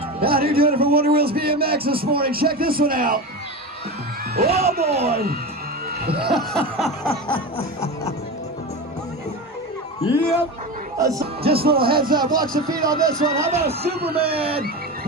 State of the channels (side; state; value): both; normal; correlation 0.24